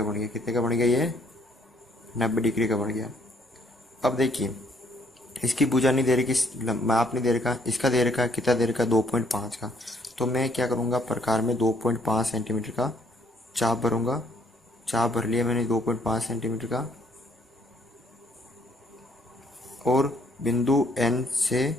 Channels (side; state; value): both; normal; correlation 0.66